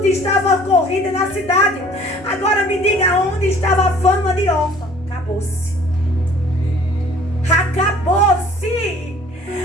estava corrida na cidade. Agora me diga onde estava a fama de Orfa. Acabou-se. Acabou-se.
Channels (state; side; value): normal; both; correlation 0.52